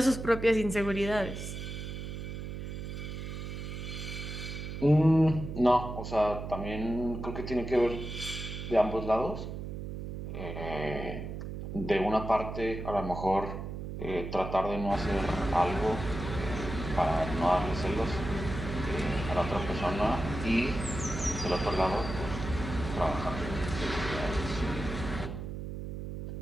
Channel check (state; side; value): noise; right; hum, 7 dB below the sound